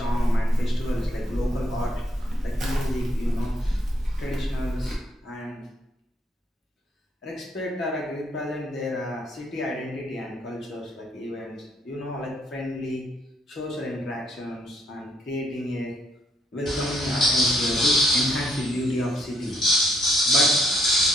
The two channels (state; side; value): normal; both; correlation 0.71